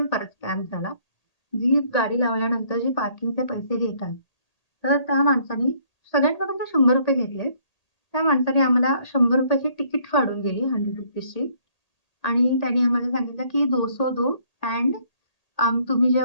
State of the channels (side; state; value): right; late; 1.8 ms